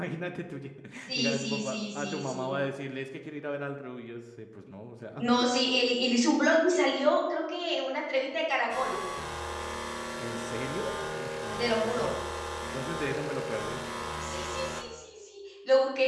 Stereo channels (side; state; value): both; identical; correlation 1.00